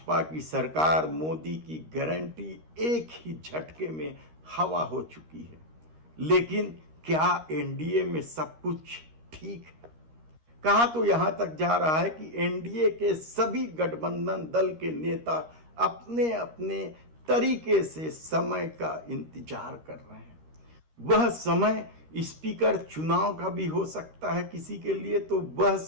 की सरकार मोदी की गारंटी एक ही झटके में हवा हो चुकी है। लेकिन क्या एनडीए में सब कुछ ठीक है? कहा तो यहां तक जा रहा है कि एनडीए के सभी गठबंधन दल के नेता अपने अपने तरीके से समय का इंतजार कर रहे हैं। वह समय स्पीकर चुनाव का भी हो सकता है किसी के लिए, तो वह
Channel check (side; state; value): left; late; 13 ms